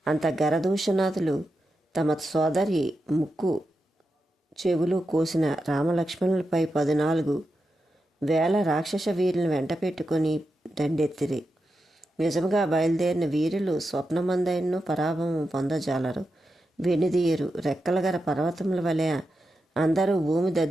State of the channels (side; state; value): both; normal; correlation 0.88